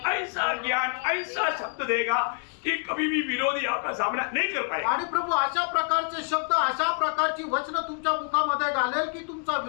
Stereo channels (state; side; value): quieter; right; 38.9 dB